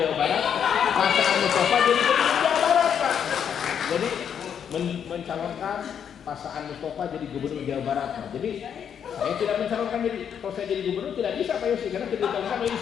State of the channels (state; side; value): quieter; right; 8.2 dB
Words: Barat, Pak Saan Mustafa jadi gubernur Jawa Barat Pak. Jadi mencalonkan Pak Saan Mustafa jadi gubernur Jawa Barat Pak. Jadi saya tidak mencalonkan jadi, kalau saya jadi gubernur tidak bisa Pak Yosi karena tidak dicalonkan oleh